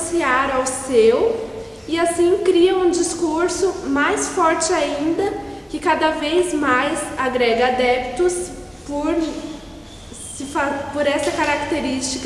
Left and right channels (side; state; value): both; identical; correlation 1.00